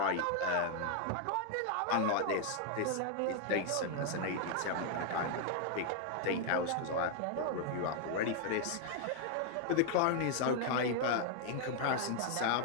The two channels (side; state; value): both; different; correlation 0.00